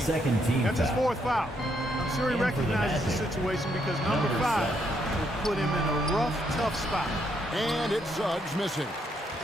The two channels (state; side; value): normal; both; correlation 0.75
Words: Second team That's his foul. 4th foul. I'm sure he And for the recognizes the Magic, situation because number number 5 7. will put him in a rough, tough spot. And it's Suggs missing.